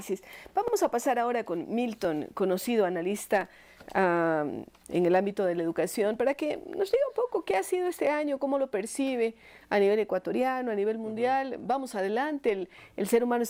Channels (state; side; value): identical; both; correlation 1.00